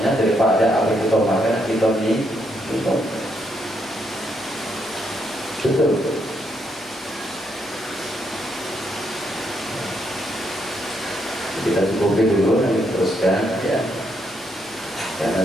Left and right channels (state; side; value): normal; both; correlation 0.76